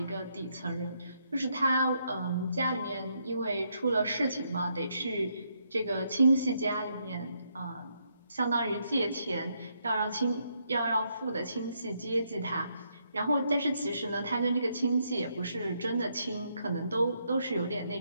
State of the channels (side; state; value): both; inverted; correlation -0.76